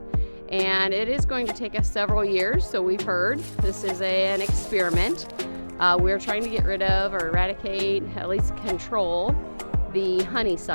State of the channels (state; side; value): inverted; both; correlation -1.00